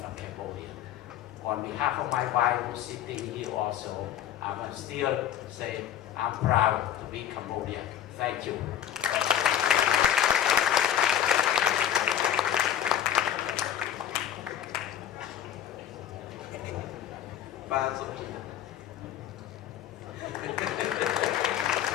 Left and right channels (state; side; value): quieter; right; 10.5 dB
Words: of Cambodia. On behalf of my wife who's sitting here also, I must still say I'm proud to be Cambodian. Thank you.